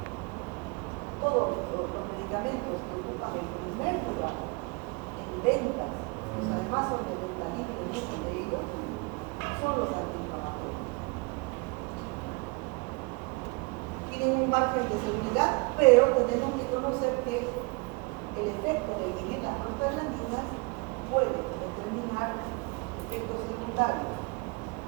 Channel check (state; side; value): quieter; left; 29.5 dB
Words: Todos los medicamentos que ocupan el primer lugar en ventas, pues además son de venta libre, muchos de ellos, son los antiinflamatorios. Tienen un margen de seguridad, pero tenemos que conocer que el efecto de inhibir las prostaglandinas puede determinar efectos secundarios.